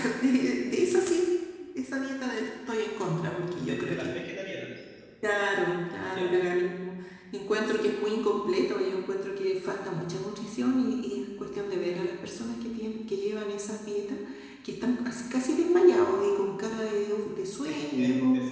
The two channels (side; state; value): both; identical; correlation 1.00